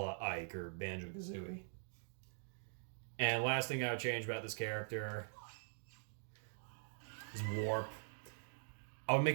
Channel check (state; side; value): silent; left; digital silence